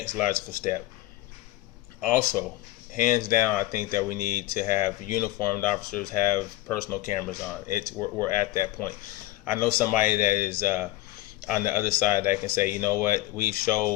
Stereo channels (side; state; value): right; quieter; 16.9 dB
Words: logical step. Also, hands down, I think that we need to have uniformed officers have personal cameras on. We're at that point. I know somebody that is on the other side that can say, you know what, we've